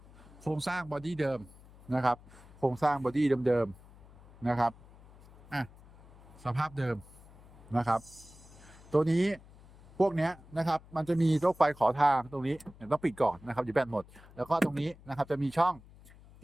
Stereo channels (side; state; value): left; noise; hum, 22 dB below the sound